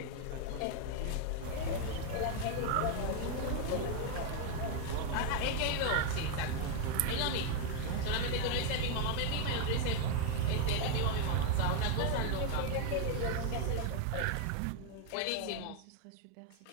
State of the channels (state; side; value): different; both; correlation 0.01